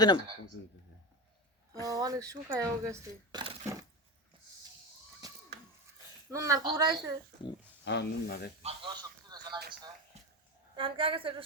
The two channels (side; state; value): both; normal; correlation 0.20